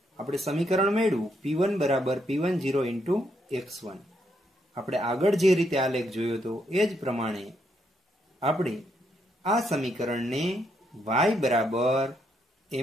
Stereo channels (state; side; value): normal; both; correlation 0.76